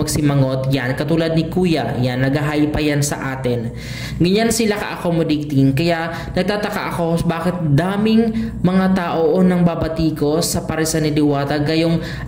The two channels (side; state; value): both; identical; correlation 1.00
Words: Yan, katulad ni Kuya, yan, nag-hi pa yan sa atin. Ganyan sila ka-accommodating. Kaya nagtataka ako bakit daming mga tao nang babati ko sa paresan ni Diwata, gayong